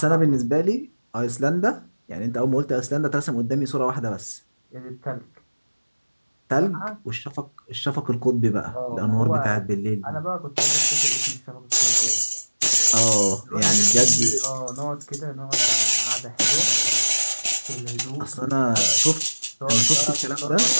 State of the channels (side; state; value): both; inverted; correlation -1.00